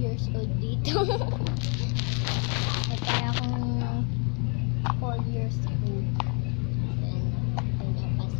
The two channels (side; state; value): right; quieter; 35.4 dB